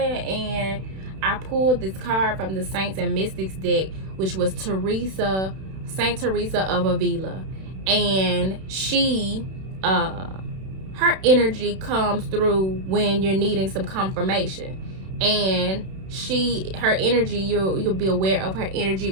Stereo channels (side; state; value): left; late; 31 ms